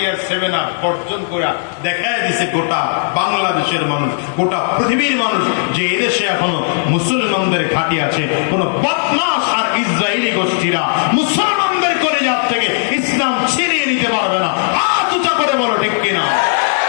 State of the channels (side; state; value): right; silent; digital silence